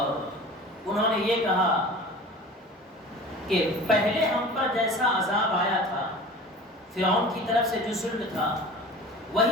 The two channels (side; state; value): both; normal; correlation 0.39